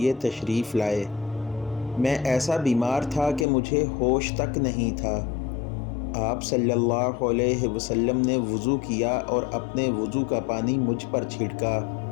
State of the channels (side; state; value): right; drops out; at 3.5 s